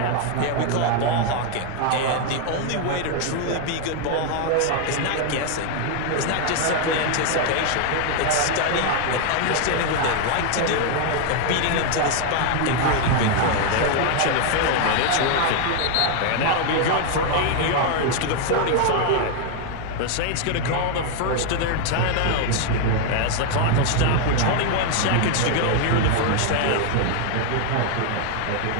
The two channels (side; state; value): both; different; correlation 0.01